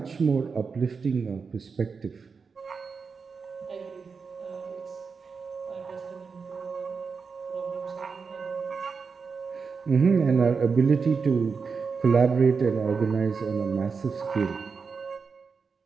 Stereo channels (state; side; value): quieter; left; 5.2 dB